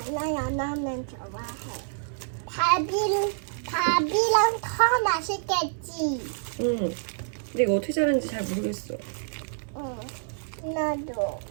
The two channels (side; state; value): left; silent; digital silence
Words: 나 연어면 좋아해. 밥이랑 더 맛있겠지. 응. 근데 이거 어떻게 자르는지 잘 모르겠어. 응, 나도